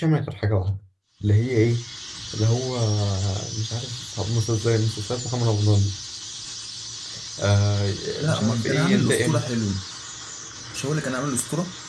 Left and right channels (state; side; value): identical; both; correlation 1.00